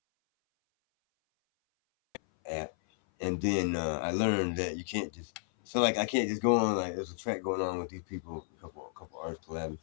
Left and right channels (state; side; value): silent; right; 56 dB below the other